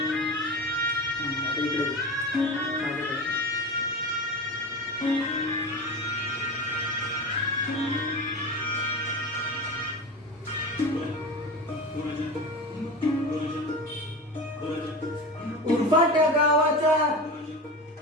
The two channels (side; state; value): both; normal; correlation 0.28